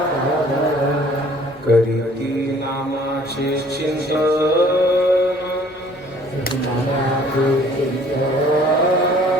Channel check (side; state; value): both; normal; correlation 0.55